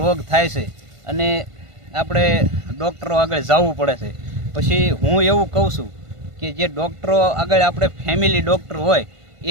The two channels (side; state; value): left; late; 1.5 ms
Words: રોગ થાય છે અને આપણે ડૉક્ટરો આગળ જવું પડે છે. પછી હું એવું કહું છું કે જે ડૉક્ટરો આગળ આપણે ફેમિલી ડૉક્ટર હોય